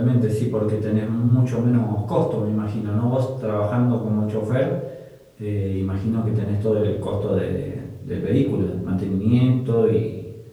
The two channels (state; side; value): identical; both; correlation 1.00